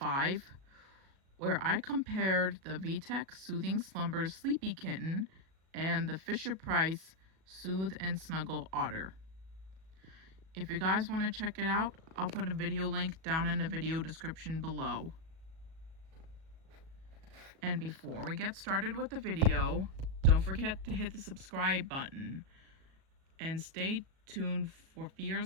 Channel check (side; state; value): left; late; 37 ms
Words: where I compared the VTech Soothing Slumbers Sleepy Kitten and the Fisher-Price Soothe and Snuggle Otter. If you guys want to check it out, I'll put a video link down in the video description below. And before we get started with the video, don't forget to hit the subscribe button. And stay tuned for